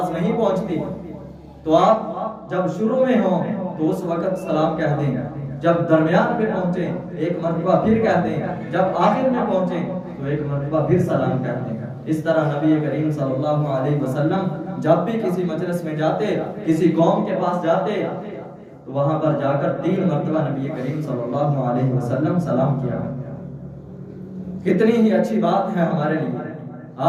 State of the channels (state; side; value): identical; both; correlation 1.00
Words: نہیں پہنچتی، تو آپ جب شروع میں ہوں تو اس وقت سلام کہہ دیں، جب درمیان میں پہنچے 1 مرتبہ پھر کہہ دیں، جب آخر میں پہنچے تو 1 مرتبہ پھر سلام کہہ دیں۔ اس طرح نبی کریم صلی اللہ علیہ وسلم جب بھی کسی مجلس میں جاتے، کسی قوم کے پاس جاتے تو وہاں پر جا کر 3 مرتبہ نبی کریم صلی اللہ علیہ وسلم سلام کیا۔ کتنی ہی اچھی بات ہے ہمارے لیے۔